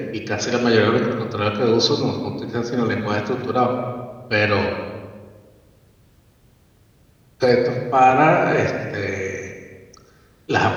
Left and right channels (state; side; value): identical; both; correlation 1.00